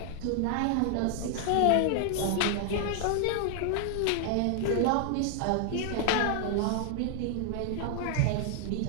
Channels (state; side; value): different; both; correlation 0.00